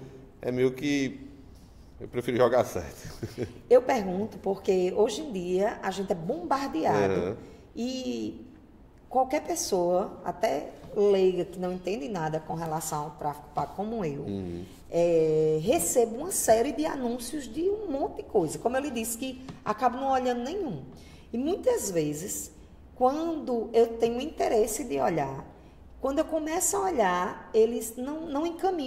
é meio que eu prefiro jogar certo. Eu pergunto porque hoje em dia a gente é bombardeado e qualquer pessoa, até leiga que não entende nada com relação ao tráfico pago como eu, recebo uma série de anúncios de um monte de coisa. Como eu lhe disse, que acabo não olhando nenhum. E muitas vezes, quando eu tenho interesse de olhar, quando eu começo a olhar, eles não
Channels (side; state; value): both; identical; correlation 1.00